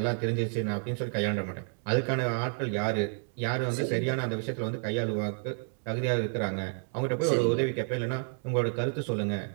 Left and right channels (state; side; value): silent; left; 58 dB below the other